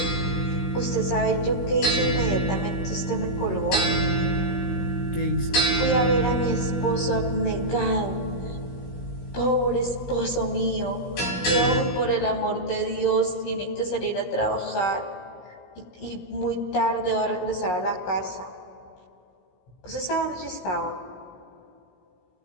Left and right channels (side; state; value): right; late; 17 ms